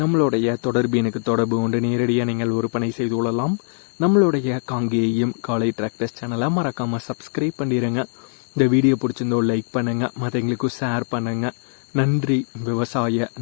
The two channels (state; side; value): silent; right; digital silence